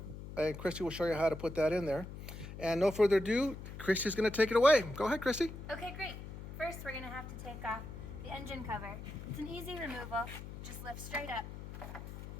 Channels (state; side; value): noise; left; hum, 11 dB below the sound